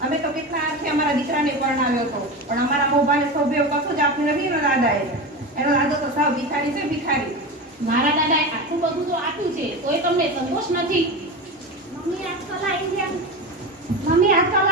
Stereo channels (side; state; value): both; normal; correlation 0.24